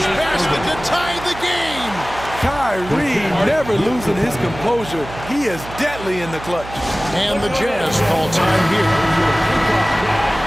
basket to tie the game. Kyrie never losing his composure. He is deadly in the clutch. And the Jazz call time here.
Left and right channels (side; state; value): right; noise; hum, 13 dB below the sound